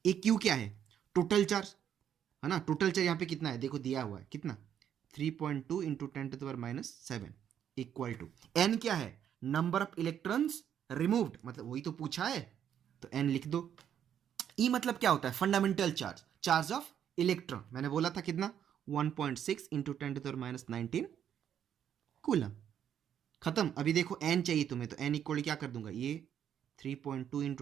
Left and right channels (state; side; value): quieter; left; 9.4 dB